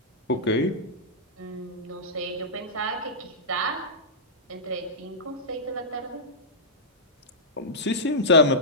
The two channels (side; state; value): both; normal; correlation -0.13